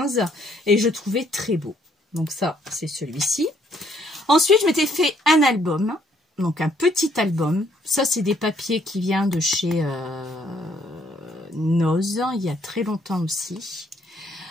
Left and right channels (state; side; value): normal; both; correlation 0.68